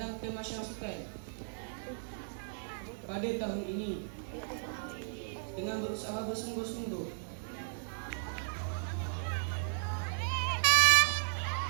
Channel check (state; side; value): silent; left; digital silence